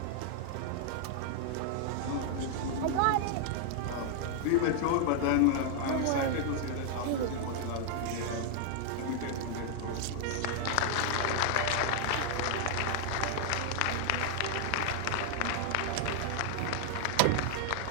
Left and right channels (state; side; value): different; both; correlation 0.00